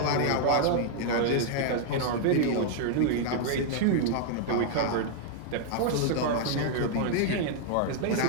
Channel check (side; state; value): both; different; correlation 0.00